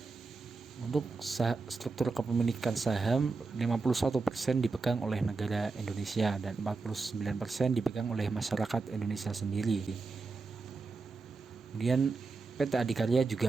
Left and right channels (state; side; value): quieter; left; 4.1 dB